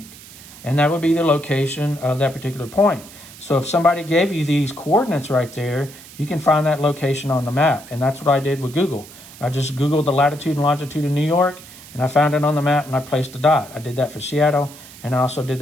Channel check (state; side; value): noise; right; hiss, 19 dB below the sound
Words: And that would be the location of that particular point. So if somebody gave you these coordinates right there, you can find that location on the map. And that's what I did with Google. I just Googled the latitude and longitude of New York, and I found it on the map, and I placed a dot. I did that for Seattle, and I also did